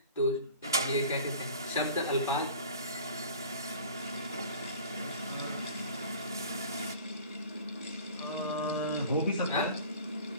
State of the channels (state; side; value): inverted; both; correlation -0.43